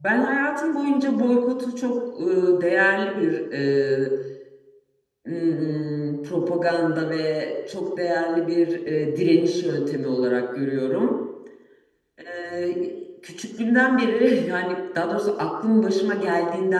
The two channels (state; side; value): identical; both; correlation 1.00